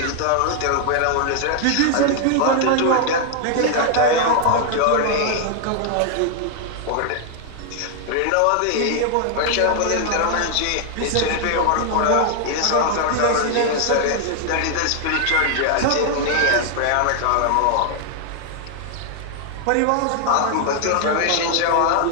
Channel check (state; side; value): different; both; correlation 0.00